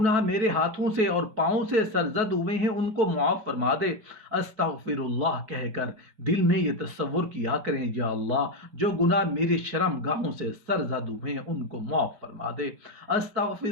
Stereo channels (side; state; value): left; late; 5.1 ms